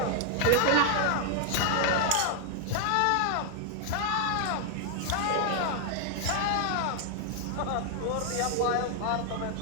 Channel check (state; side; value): different; both; correlation 0.00